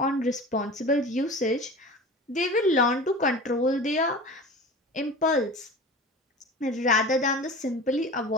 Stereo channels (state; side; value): normal; both; correlation 0.35